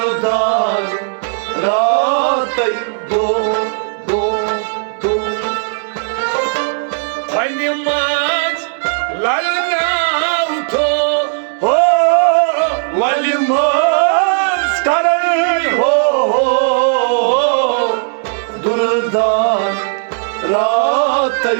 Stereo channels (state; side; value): silent; left; digital silence